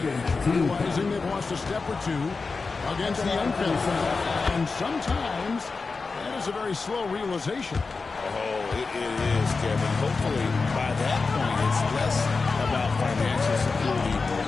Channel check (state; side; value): quieter; right; 4.3 dB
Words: realizing they've lost a step or two against the unfit. And sometimes that is a very slow realization. Oh, it is, Kevin. Hopefully, by that point, it's less about financial security